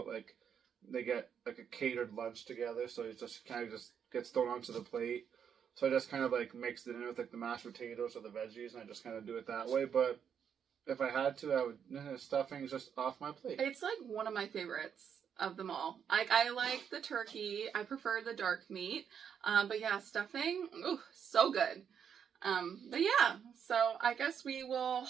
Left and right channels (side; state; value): left; quieter; 7.8 dB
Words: they get, a catered lunch together, so it just kind of just gets thrown onto the plate. So I just kind of, mix it in with, the mashed potatoes or the veggies, and I just kind of do it that way. But if I had to, I would, stuffing's just off my plate. It's, one of my favorites of them all. I like the turkey. I prefer the dark meat. But yeah, stuffing, ooh, so good. But yeah, so I guess we will